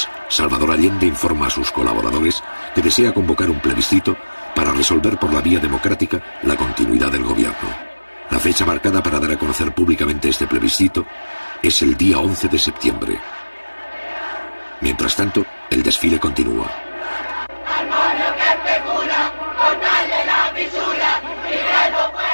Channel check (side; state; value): both; inverted; correlation -1.00